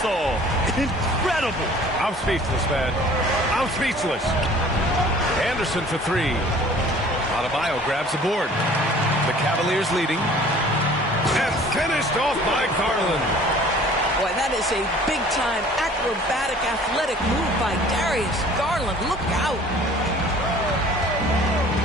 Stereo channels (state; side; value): normal; both; correlation 0.50